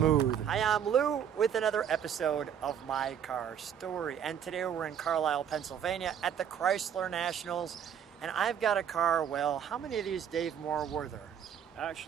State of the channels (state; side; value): quieter; left; 8.7 dB